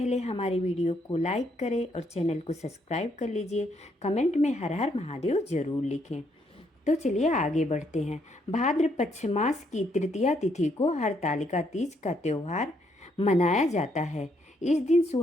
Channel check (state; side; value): normal; both; correlation 0.73